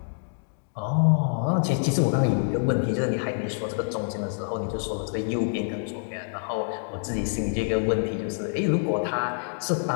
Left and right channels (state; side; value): silent; right; 61 dB below the other